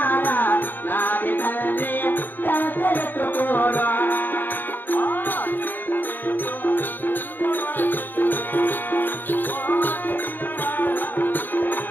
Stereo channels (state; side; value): late; right; 0.093 ms